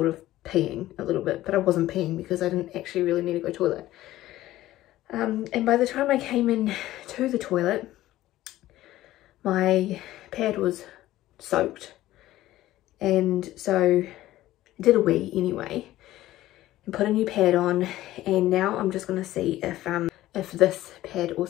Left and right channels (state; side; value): quieter; right; 15.2 dB